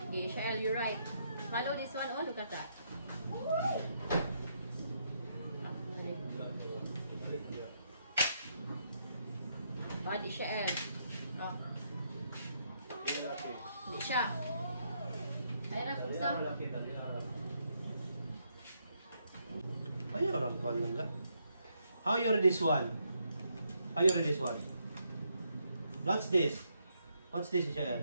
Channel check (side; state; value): both; inverted; correlation -0.76